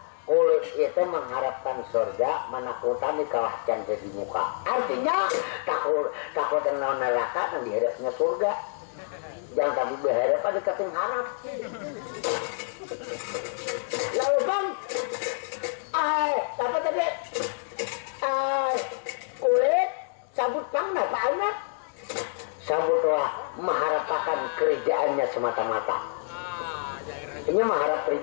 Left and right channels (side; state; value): right; silent; digital silence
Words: Kulit itu mengharapkan surga, menakutan di kawasan jadi muka. Artinya takut dengan neraka dan dihadapnya surga. Jangan tapi berharap pada keting harap. Lalu Bang, apa tadi? Kulit sabut Bang, apa anak? Sabutlah mengharapkan kerjaannya semata-mata. Ini mengharap